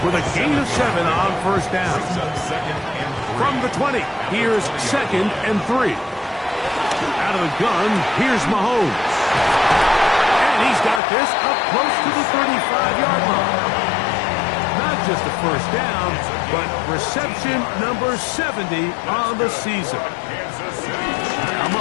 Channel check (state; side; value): drops out; right; at 11.0 s